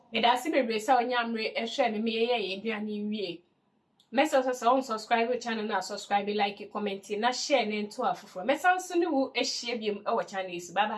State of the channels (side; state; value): both; identical; correlation 1.00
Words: Medasi bebre sa onyamre ehwe me ye eduane wie. Mesa so unsubscribe channel na subscribe, like, comment na share na nto afoforo. Mesa so ne wo ehie biem e wo channel is. Bye